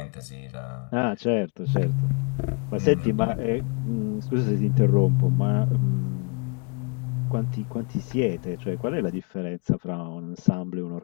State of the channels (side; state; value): right; quieter; 34.7 dB